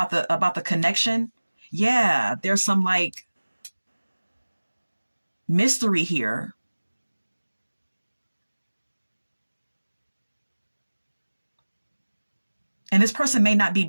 the connection. Yeah, there's some like mystery here. And this person may not be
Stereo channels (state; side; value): inverted; both; correlation -1.00